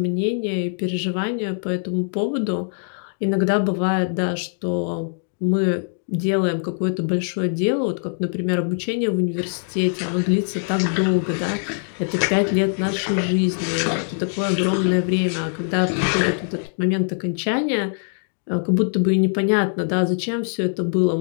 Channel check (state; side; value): silent; right; digital silence